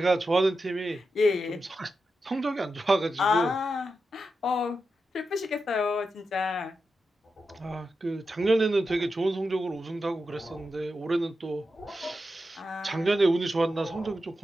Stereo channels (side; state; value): both; normal; correlation 0.89